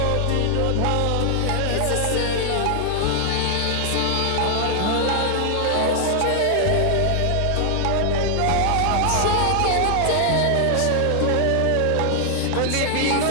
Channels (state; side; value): different; both; correlation 0.00